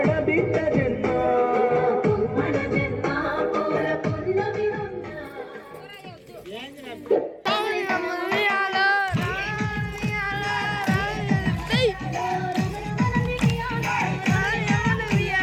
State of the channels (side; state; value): both; identical; correlation 1.00